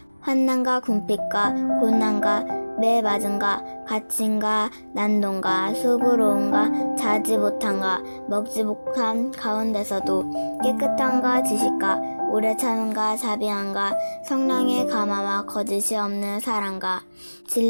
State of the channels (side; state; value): both; inverted; correlation -1.00